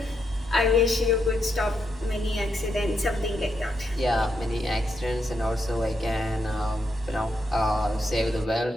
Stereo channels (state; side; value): normal; both; correlation 0.81